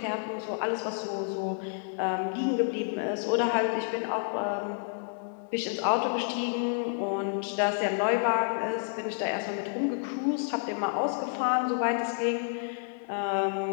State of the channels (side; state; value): right; silent; 58 dB below the other